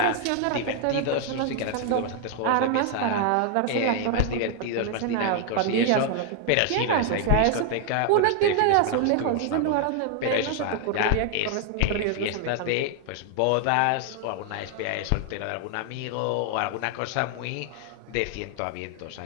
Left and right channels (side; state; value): both; different; correlation 0.00